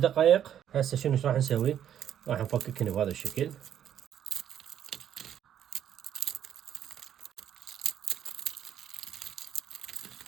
هسه شنو راح نسوي؟ راح نفككن بهذا الشكل.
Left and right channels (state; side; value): quieter; left; 10.0 dB